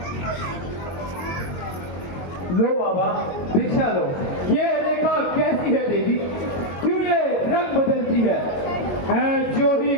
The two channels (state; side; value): late; right; 22 ms